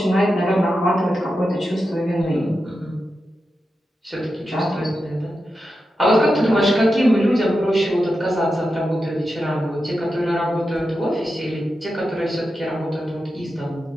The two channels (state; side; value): normal; both; correlation 0.89